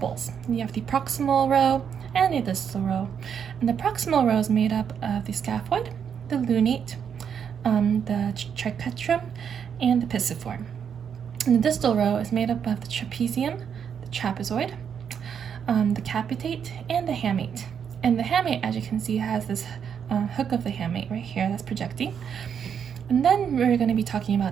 You have the proximal row and the distal row. And the proximal row is made up of the scaphoid, the lunate, the triquetrum, and the pisiform. And the distal row is made up of the trapezium, the trapezoid, the capitate, and the hamate. And the hamate, as you can see, has this hook of the hamate right here that's projecting. And then we're going to be talking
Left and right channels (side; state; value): left; quieter; 7.7 dB